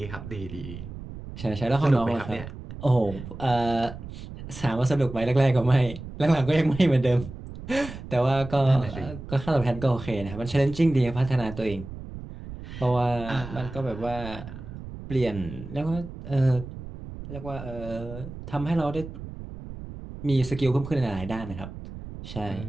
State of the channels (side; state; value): right; noise; rumble, 11 dB below the sound